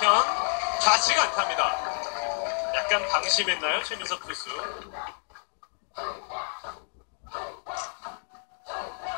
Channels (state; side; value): silent; right; 59 dB below the other